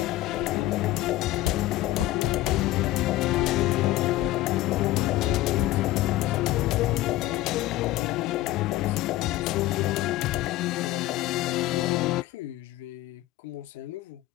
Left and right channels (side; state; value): right; quieter; 15.9 dB